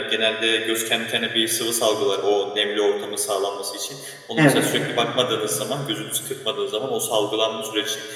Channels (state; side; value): identical; both; correlation 1.00